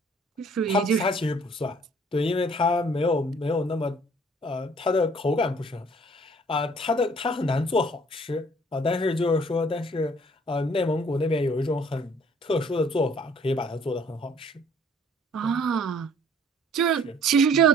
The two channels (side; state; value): both; normal; correlation 0.57